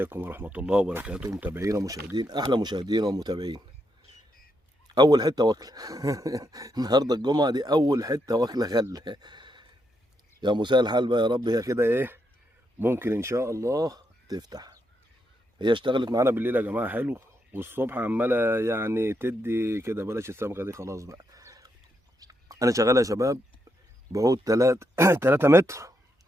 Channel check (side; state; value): both; normal; correlation 0.80